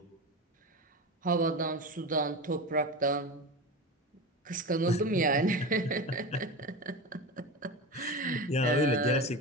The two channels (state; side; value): normal; both; correlation 0.25